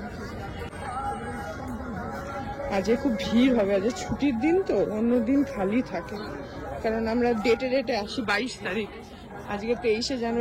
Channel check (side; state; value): both; identical; correlation 1.00